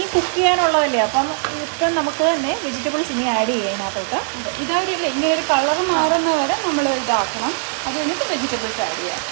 കുക്ക് ചെയ്യാനുള്ളതല്ലേ, അപ്പം ഇപ്പം നമുക്ക് തന്നെ വെജിറ്റബിൾസ് ഇനി ആഡ് ചെയ്യാം ഇതിനകത്തോട്ട്. ഇതാവില്ല, ഇങ്ങനെ ഒരു കളർ മാറുന്ന വരെ നമ്മൾ ഇതാക്കണം. അത് കഴിഞ്ഞിട്ട് വെജിറ്റബിൾസ് ആഡ് ചെയ്യാം.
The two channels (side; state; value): left; silent; 55 dB below the other